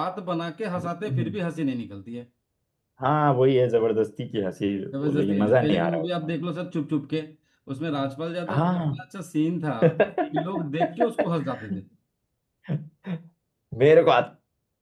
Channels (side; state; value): both; identical; correlation 1.00